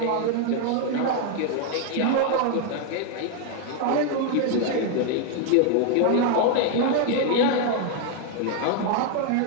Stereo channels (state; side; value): different; both; correlation 0.01